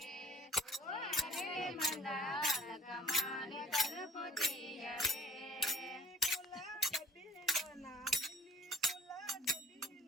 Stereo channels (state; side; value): normal; both; correlation 0.53